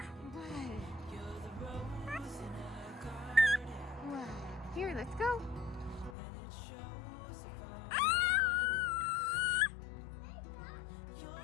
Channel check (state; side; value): drops out; right; at 6.2 s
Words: Here, let's go.